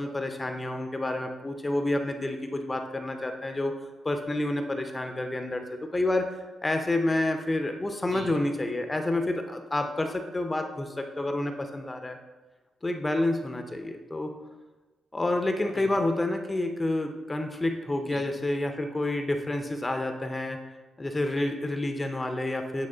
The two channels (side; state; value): both; normal; correlation 0.93